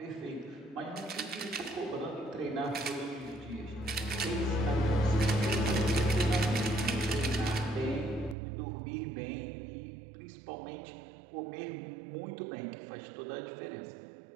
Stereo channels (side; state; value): left; drops out; at 8.3 s